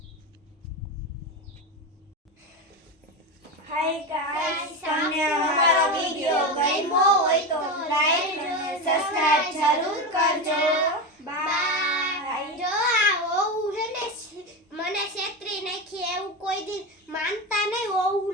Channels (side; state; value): both; normal; correlation 0.18